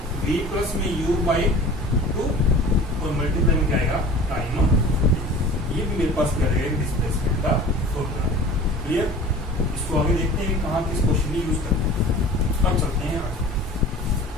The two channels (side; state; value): both; normal; correlation 0.41